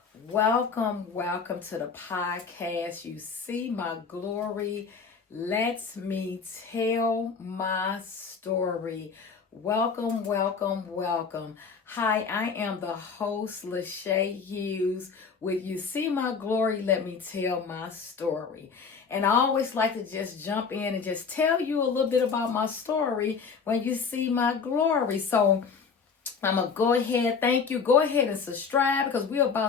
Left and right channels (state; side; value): quieter; right; 5.6 dB